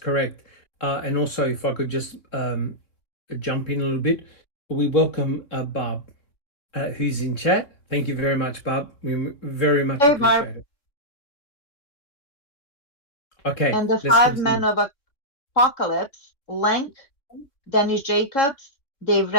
And also, if I could just jump in a little bit, we welcome Barb, who's in chat. Thank you very much, Barb. We very much appreciate it. Okay. And the 5 men of Apocalypse: Lenk, Dennis Jacobs, Dave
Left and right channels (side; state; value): right; late; 3.6 ms